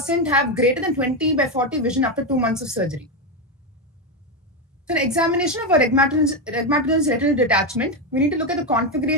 have greater than 20/40 vision after 2 months of surgery. So, an examination of a rhegmatogenous retinal detachment, we need to look at the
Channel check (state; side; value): normal; both; correlation 0.09